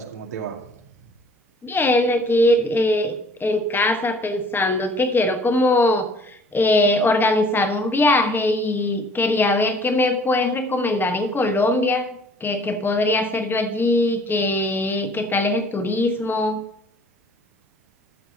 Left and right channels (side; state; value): both; normal; correlation 0.54